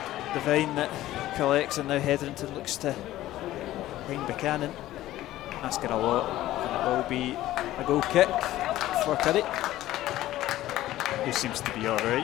Devine that collects, and now Hetherington looks to find Buchanan, asking a lot, and it will be a goal kick for Curry, who seems to be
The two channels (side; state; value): right; quieter; 15.0 dB